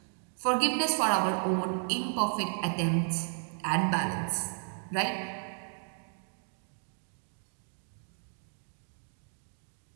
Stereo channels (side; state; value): left; silent; 56 dB below the other